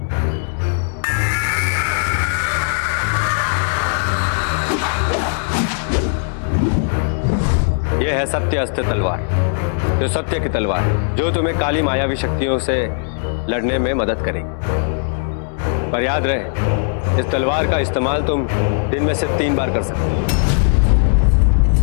यह है सत्य अस्त्र तलवार, जो सत्य की तलवार है, जो तुम्हें काली मायावी शक्तियों से लड़ने में मदद करेगी। पर याद रहे, इस तलवार का इस्तेमाल तुम दिन में से 3 बार कर सकते हो।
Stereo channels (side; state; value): right; silent; digital silence